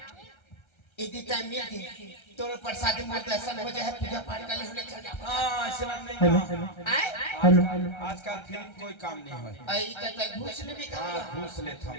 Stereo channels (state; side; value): late; right; 1.3 ms